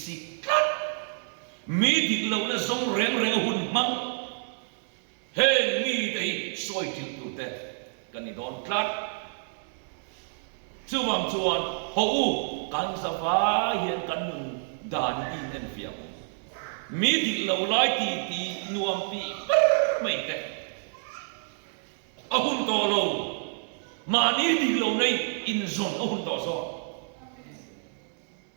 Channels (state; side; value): silent; left; digital silence